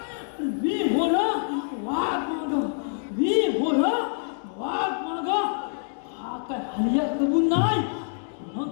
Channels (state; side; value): silent; right; digital silence